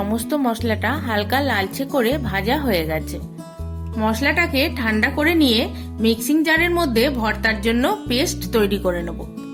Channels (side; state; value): both; identical; correlation 1.00